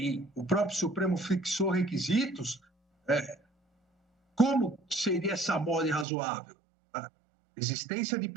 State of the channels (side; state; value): left; drops out; at 6.1 s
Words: o próprio Supremo fixou requisitos, como seria essa mora irrazoável? A existência de